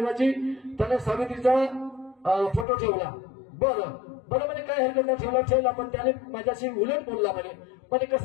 त्याने सावित्रीचा फोटो ठेवला. बरं म्हणे काय हरकत नाही, ठेवला पण त्याने माझ्याशी उलट बोलला म्हणे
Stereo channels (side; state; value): right; drops out; at 2.7 s